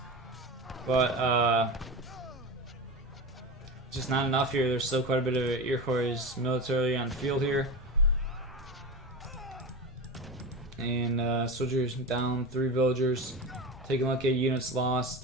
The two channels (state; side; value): normal; both; correlation 0.24